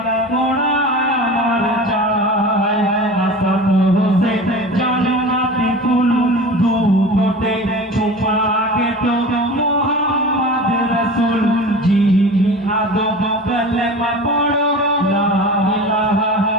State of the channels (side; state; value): both; normal; correlation 0.35